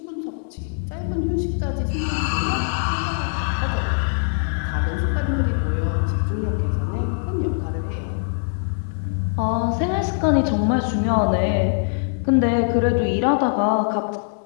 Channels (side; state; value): right; silent; 63 dB below the other